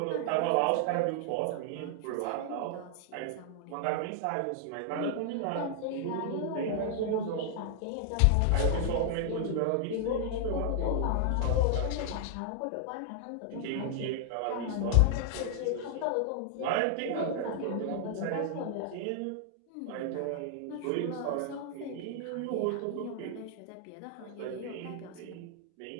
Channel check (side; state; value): both; different; correlation 0.00